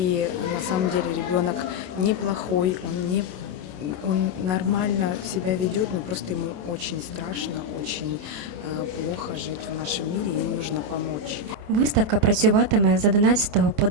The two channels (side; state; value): left; late; 27 ms